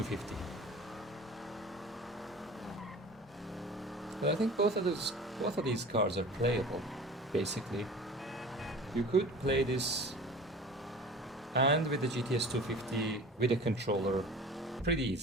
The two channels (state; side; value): normal; both; correlation 0.40